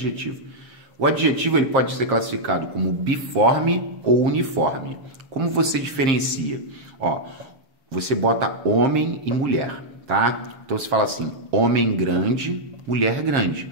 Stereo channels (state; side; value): late; left; 7.4 ms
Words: O adjetivo ele pode ser classificado como biforme ou uniforme. Como você diferencia? Ó, você bota homem e mulher, tá? Então você fala assim, homem grande, mulher grande.